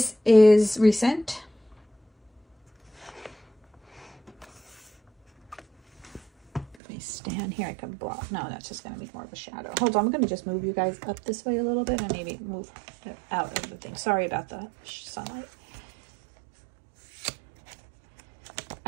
is recent. Let me stand here. I can block. No, that's just going to be more of a shadow. Hold on. I'm going to just move you guys up this way a little bit and maybe move it out of the thing. Sorry about the sunlight.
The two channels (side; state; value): left; drops out; at 6.8 s